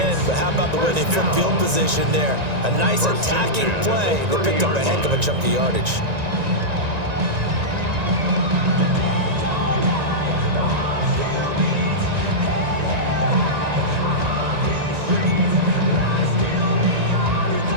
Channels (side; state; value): left; late; 1.9 ms